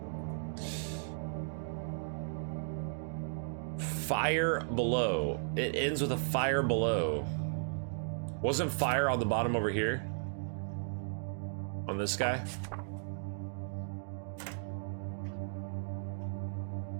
Fire below. It ends with a fire below. Wasn't fire on the bottom over here? On this guy?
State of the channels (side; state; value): left; silent; digital silence